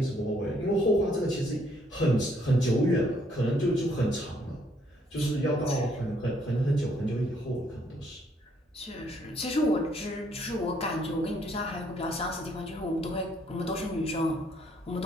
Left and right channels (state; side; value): normal; both; correlation 0.68